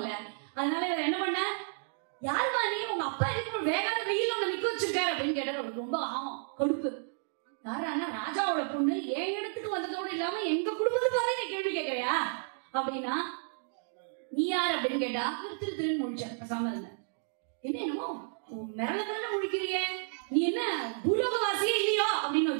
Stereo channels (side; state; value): left; silent; digital silence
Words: அதனால இவர் என்ன பண்ண, யாருமா நீ, உங்க அப்பா எதுக்கு வேகாத வெயில் உங்க நிக்க வச்சிருக்காரு அப்படின்னு கேட்டார். அவருக்கு ரொம்ப ஆகும் கொடுப்பு. யாரானா ராஜாவோட பொண்ணு என் இடத்துக்கு வந்ததோடு இல்லாம எங்க குடும்பத்தை பாரு நீ கேள்வி கேட்கறியா அப்படின்னா, நீ யார் அப்படின்னு கேட்டா இவர் திருன்னு முடிச்சார். பேசாம இருந்த என்னமோ மிரள முடிக்கிறிய, நீ என்ன பூலோகவாசியே இல்லையோ அப்படின்னு